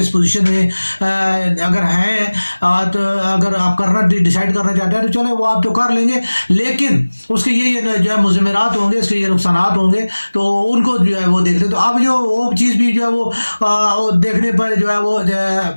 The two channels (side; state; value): both; inverted; correlation -1.00